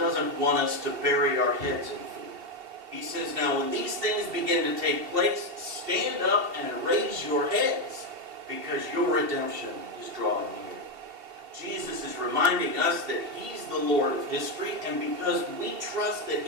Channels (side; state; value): left; late; 2.7 ms